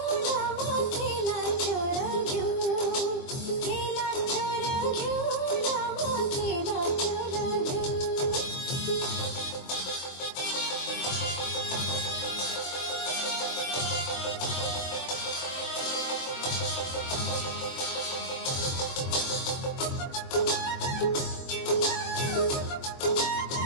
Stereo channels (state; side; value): late; right; 23 ms